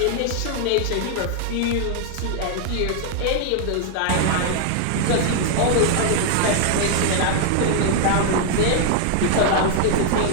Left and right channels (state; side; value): different; both; correlation 0.00